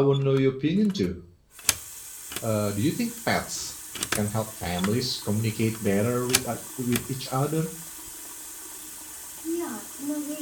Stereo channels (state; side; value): identical; both; correlation 1.00